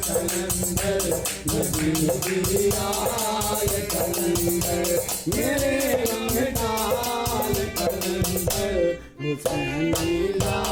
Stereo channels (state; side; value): identical; both; correlation 1.00